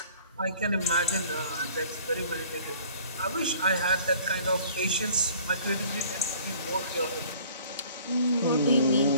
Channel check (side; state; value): both; inverted; correlation -0.52